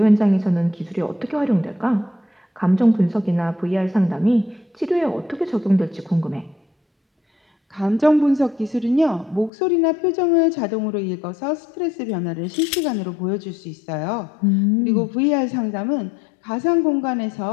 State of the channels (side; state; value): right; drops out; at 9.5 s